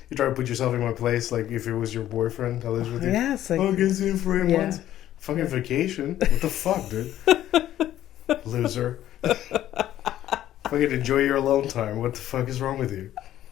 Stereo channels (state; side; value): quieter; right; 12.6 dB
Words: to put yourself in my place, like if it was your boyfriend that lives with you. Yeah, it's like... Oh, get you for 8 months. Fucking vacation. What the fuck, dude? Loser. Fucking enjoy your alone time. What the fuck is wrong with you?